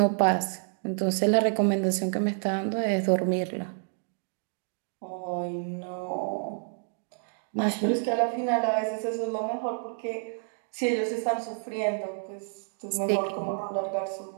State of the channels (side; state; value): left; silent; digital silence